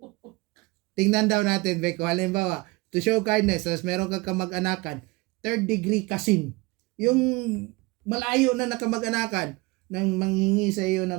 Tingnan daw natin, Beko, halimbawa, to show kindness, tapos meron kang kamag-anakan, third degree cousin. Yung malayo na nakamag-anakan, nang manghingi sa iyo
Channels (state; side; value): quieter; left; 23.9 dB